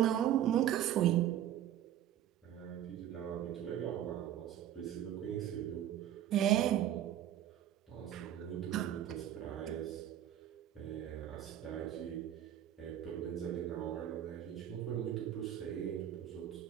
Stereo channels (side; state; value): left; quieter; 11.3 dB